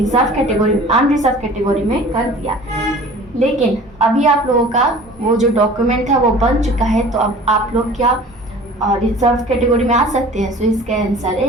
कैटेगरी, अनरिजर्व कैटेगरी में कर दिया। लेकिन अभी आप लोगों का वो जो डॉक्यूमेंट था वो बन चुका है, तो अब आप लोग क्या रिजर्व कैटेगरी में आ सकते हैं। इसका आंसर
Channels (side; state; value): both; normal; correlation 0.45